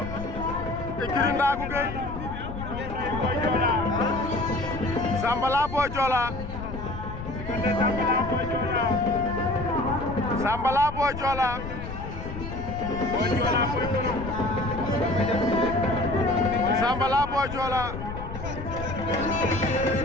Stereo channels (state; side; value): noise; left; rumble, 8 dB below the sound